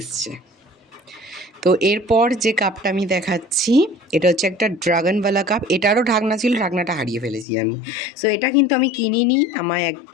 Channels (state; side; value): drops out; right; at 7.5 s